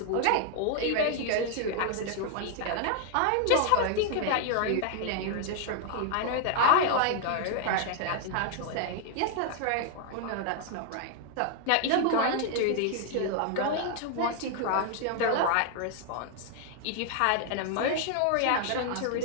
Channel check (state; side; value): different; both; correlation 0.00